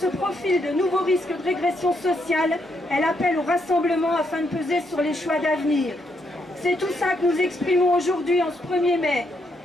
profilent de nouveaux risques de régression sociale, elle appelle au rassemblement afin de peser sur les choix d'avenir. C'est tout ça que nous exprimons aujourd'hui en ce 1er mai.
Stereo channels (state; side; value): normal; both; correlation 0.77